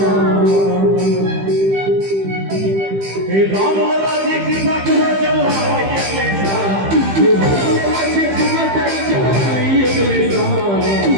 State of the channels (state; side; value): late; left; 15 ms